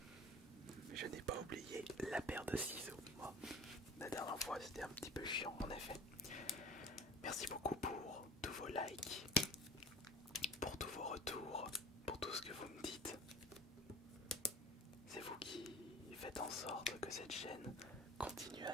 je n'ai pas oublié la paire de ciseaux. Bon, la dernière fois c'était un petit peu chiant en effet. Merci beaucoup pour tous vos likes, pour tous vos retours, pour tout ce que vous me dites. C'est vous qui faites en sorte que cette chaîne continue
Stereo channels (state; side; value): normal; both; correlation 0.40